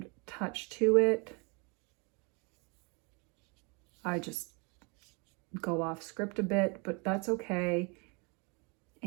touch to it. I just go off script a bit, but that's okay.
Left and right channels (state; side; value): quieter; left; 31.6 dB